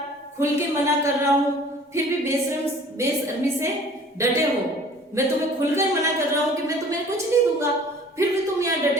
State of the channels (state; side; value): normal; both; correlation 0.50